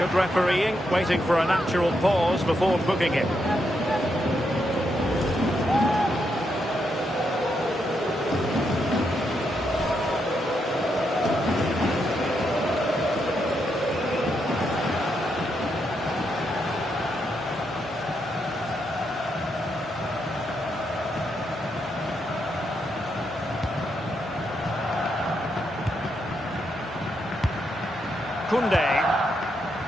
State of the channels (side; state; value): both; normal; correlation 0.80